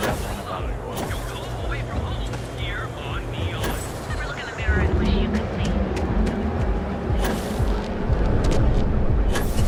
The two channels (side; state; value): both; identical; correlation 1.00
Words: one about an oil?